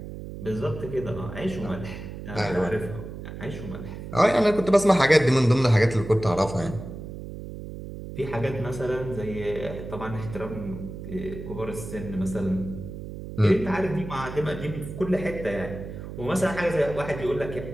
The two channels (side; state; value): right; noise; hum, 10 dB below the sound